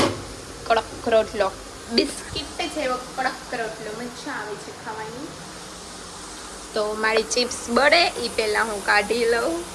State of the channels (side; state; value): both; identical; correlation 1.00